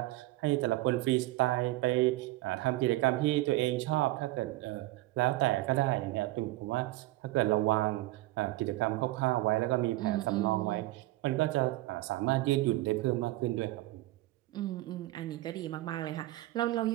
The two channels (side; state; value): left; quieter; 18.0 dB